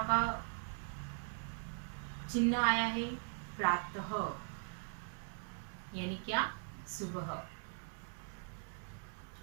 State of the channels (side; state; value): left; silent; 51 dB below the other